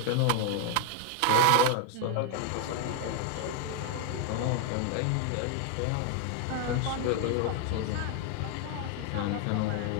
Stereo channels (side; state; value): both; different; correlation 0.00